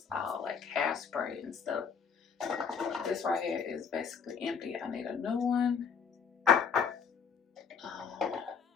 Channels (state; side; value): quieter; right; 6.3 dB